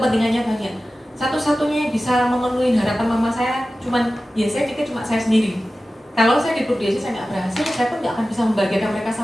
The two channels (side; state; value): both; normal; correlation 0.95